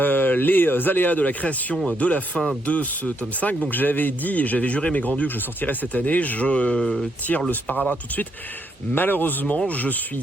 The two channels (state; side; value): normal; both; correlation 0.76